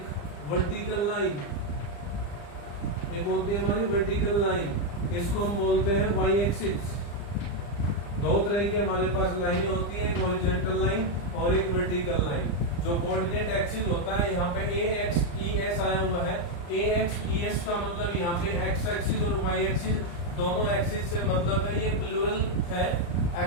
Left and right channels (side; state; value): right; late; 35 ms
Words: वर्टिकल लाइन, एक होती है हमारी वर्टिकल लाइन, इसको हम बोलते हैं वाई एक्सिस। दो तरह की हमारे पास लाइनें होती है, एक हॉरिजॉन्टल लाइन और एक वर्टिकल लाइन। जो कोऑर्डिनेट एक्सिस होता है, यहाँ पे ए एक्स ई एस आया हुआ है। ए एक्स ई एस का मतलब यहाँ पे एक्स एक्सिस और वाई एक्सिस दोनों एक्सिस से मतलब है, ये प्लूरल है।